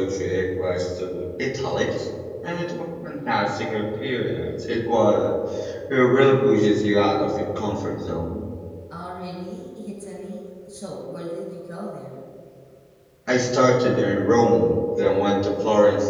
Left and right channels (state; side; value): identical; both; correlation 1.00